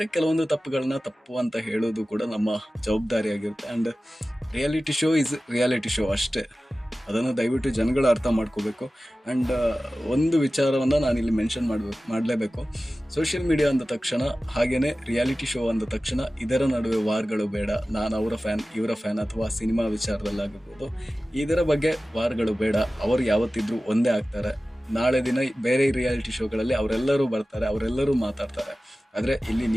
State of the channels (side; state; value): both; normal; correlation 0.96